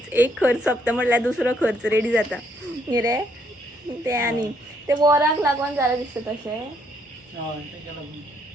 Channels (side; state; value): both; normal; correlation 0.71